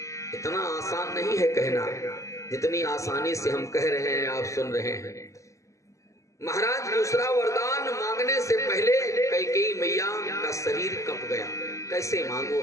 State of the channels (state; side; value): late; right; 0.15 ms